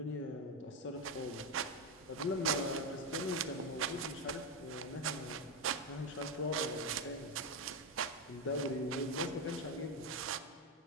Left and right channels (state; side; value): normal; both; correlation 0.09